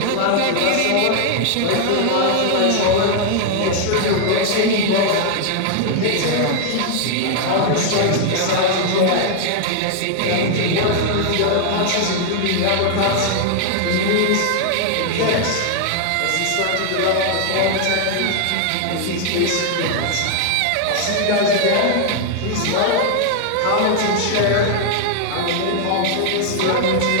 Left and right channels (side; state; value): both; different; correlation 0.00